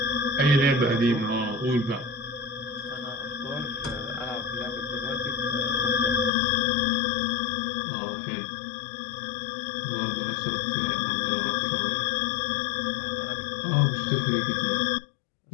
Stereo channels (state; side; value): drops out; right; at 6.3 s